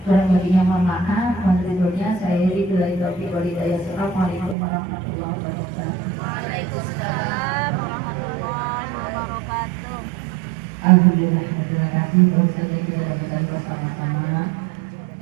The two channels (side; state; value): left; drops out; at 4.5 s